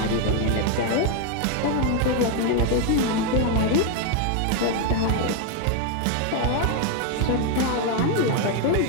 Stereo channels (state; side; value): different; both; correlation 0.01